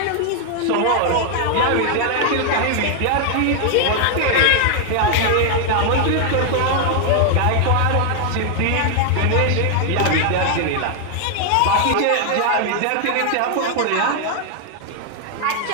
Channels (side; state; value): both; different; correlation 0.00